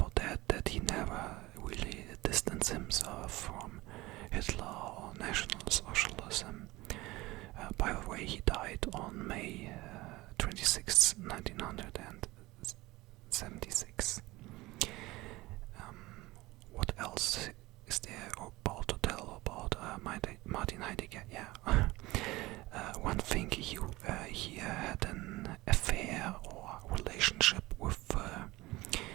that he never really distanced himself from Hitler or National Socialism. By the way, he died on May 26, 1976. What else is there about to tell about Martin Heidegger? Yeah, one thing, he had an affair or relationship with a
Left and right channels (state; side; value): quieter; left; 20.0 dB